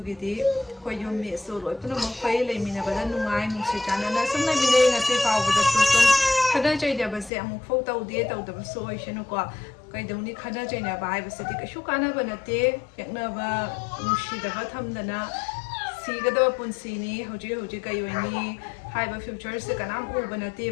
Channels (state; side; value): drops out; right; at 7.3 s